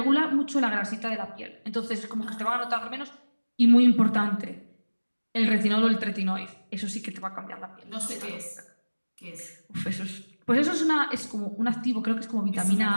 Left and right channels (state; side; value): inverted; both; correlation -1.00